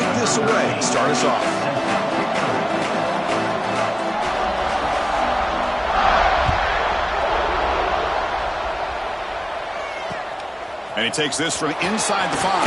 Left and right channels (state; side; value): identical; both; correlation 1.00